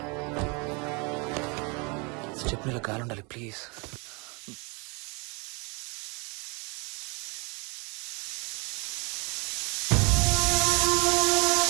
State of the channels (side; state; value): left; quieter; 30.9 dB